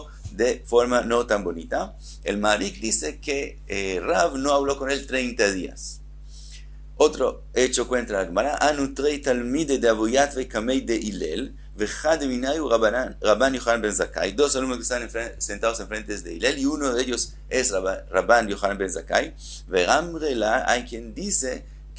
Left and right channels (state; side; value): identical; both; correlation 1.00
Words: de forma no tan bonita. El Marik dice que Rav no habló con él 30 días. Otro hecho cuenta la Gemara, Anu trei talmide de Abu Yatvei Kamei de Hillel, vechad minayu Rabban Yochanan ben Zakkai. Dos alumnos que están sentados enfrente de Hillel, y uno de ellos es Rabban Yochanan ben Zakkai. Veramrela, hay quien dice